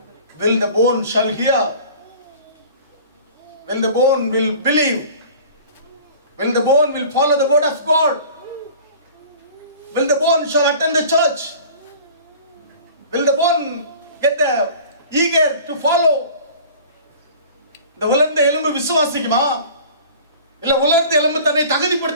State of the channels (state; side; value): inverted; both; correlation -0.43